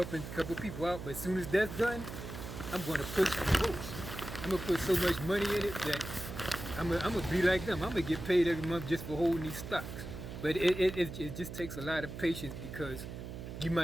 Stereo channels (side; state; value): right; noise; hum, 9 dB below the sound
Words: a couple people out, but as soon as that's done, I'm going to push the most. I'm going to put so much money in it that I'm going to be like them. I'm going to get paid every month just for holding these stocks. But it just takes a lot of patience, because you